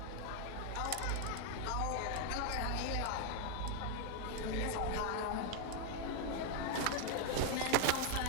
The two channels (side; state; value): both; different; correlation 0.01